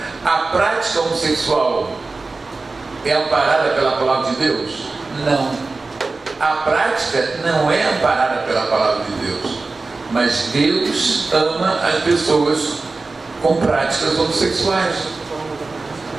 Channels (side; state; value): left; quieter; 3.7 dB